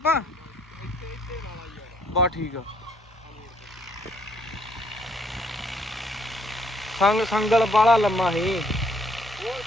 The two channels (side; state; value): both; normal; correlation 0.66